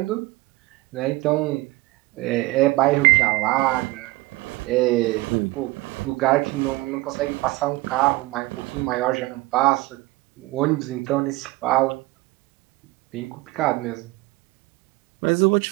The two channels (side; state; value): left; quieter; 20.3 dB